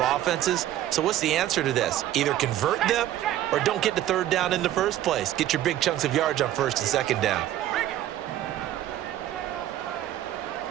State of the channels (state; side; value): quieter; left; 12.9 dB